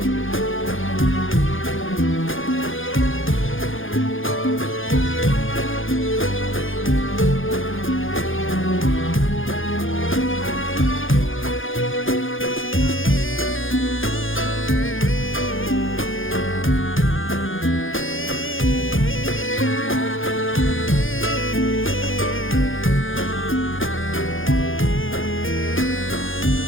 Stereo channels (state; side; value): late; right; 0.58 ms